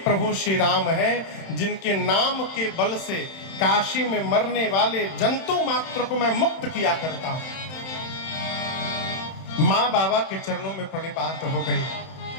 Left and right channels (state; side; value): late; right; 31 ms